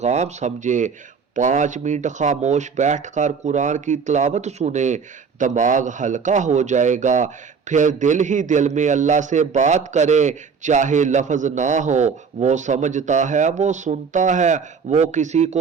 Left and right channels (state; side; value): quieter; left; 5.8 dB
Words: سمجھے۔ 5 منٹ خاموش بیٹھ کر قرآن کی تلاوت سنیں، دماغ ہلکا ہو جائے گا۔ پھر دل ہی دل میں اللہ سے بات کریں، چاہے لفظ نہ ہو، وہ سمجھتا ہے، وہ سنتا ہے، وہ کسی